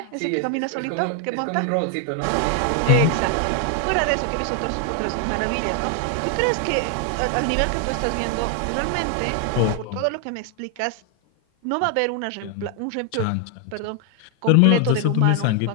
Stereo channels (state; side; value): different; both; correlation 0.00